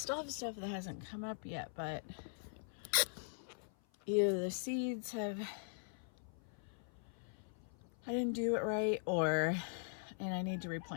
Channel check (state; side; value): silent; right; 50 dB below the other